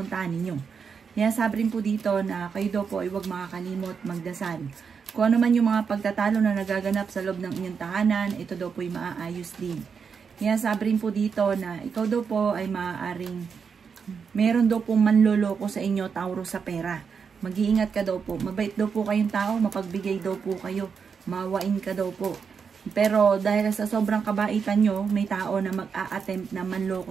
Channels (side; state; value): left; quieter; 6.1 dB